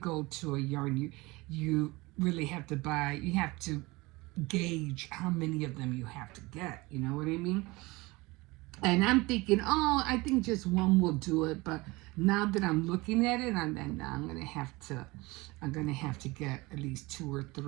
to a yarn, you really have to buy, you have to gauge how many of them you have to get, you know what I mean? And I'm thinking, oh, I think just one will do it. But now that I'm looking at it, I'm gonna have to get at least 2 or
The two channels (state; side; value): quieter; left; 22.7 dB